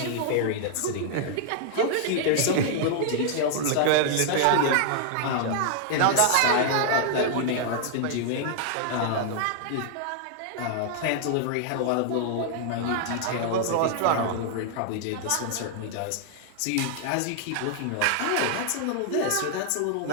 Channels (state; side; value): different; both; correlation -0.01